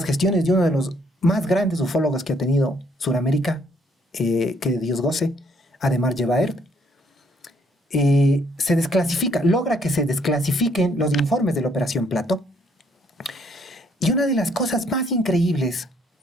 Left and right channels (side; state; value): both; normal; correlation 0.67